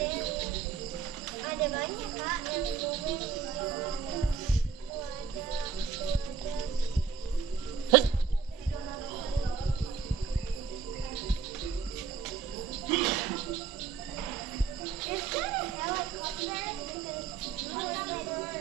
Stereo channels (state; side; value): quieter; left; 6.2 dB